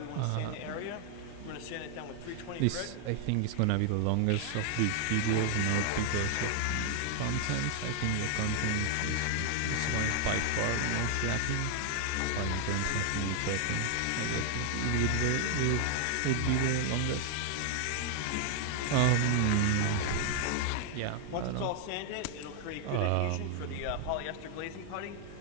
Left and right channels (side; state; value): both; different; correlation 0.00